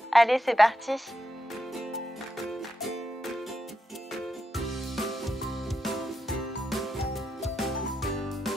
Allez, c'est parti!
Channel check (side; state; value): both; normal; correlation 0.84